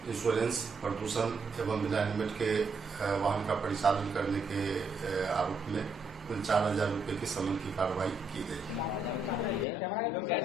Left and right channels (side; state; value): left; quieter; 3.3 dB